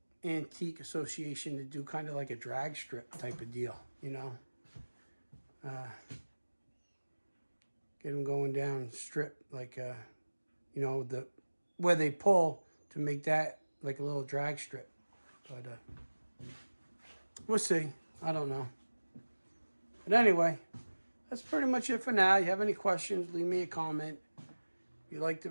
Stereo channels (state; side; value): inverted; both; correlation -1.00